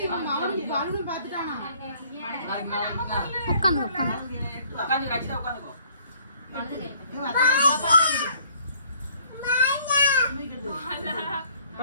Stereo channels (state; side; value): inverted; both; correlation -0.60